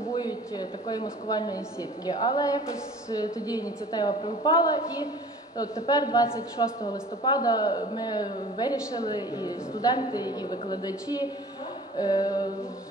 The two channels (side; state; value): both; normal; correlation 0.45